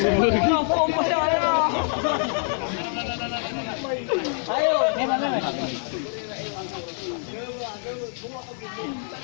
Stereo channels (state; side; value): silent; right; 58 dB below the other